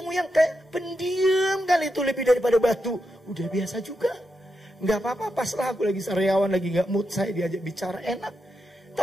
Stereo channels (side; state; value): both; normal; correlation 0.86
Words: yang kayak pendiam kali itu lebih daripada batu, udah biasa juga. Nggak apa-apa, paslah aku lagi sariawan, lagi nggak mood, saya diajak bicara enak.